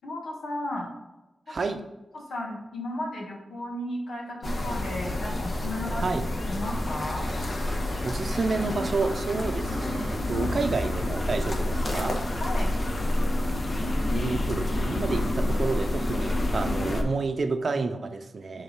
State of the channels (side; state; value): both; normal; correlation 0.91